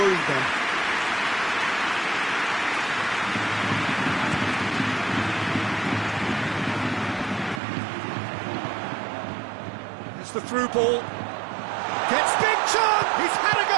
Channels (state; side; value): drops out; left; at 7.6 s